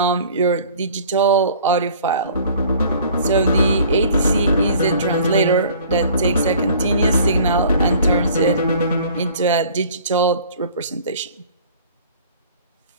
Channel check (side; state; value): both; inverted; correlation -0.50